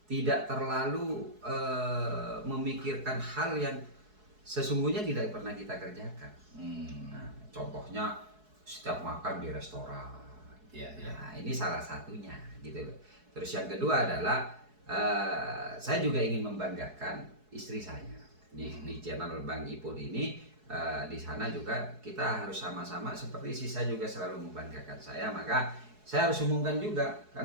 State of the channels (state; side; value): late; left; 4.7 ms